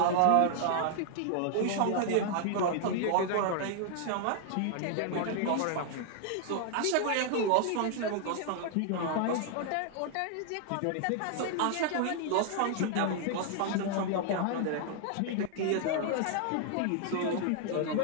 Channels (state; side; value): different; both; correlation 0.00